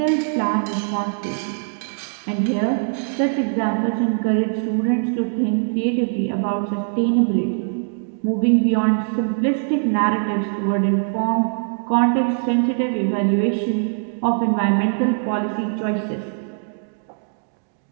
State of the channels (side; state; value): left; silent; digital silence